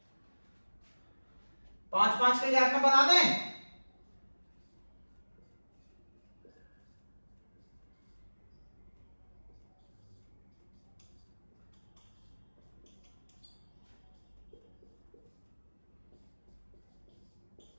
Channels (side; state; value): both; inverted; correlation -1.00